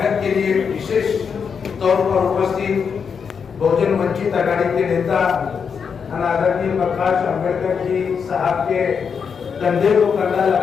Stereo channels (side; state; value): right; quieter; 6.4 dB